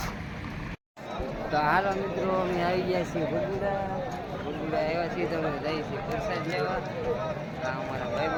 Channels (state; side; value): identical; both; correlation 1.00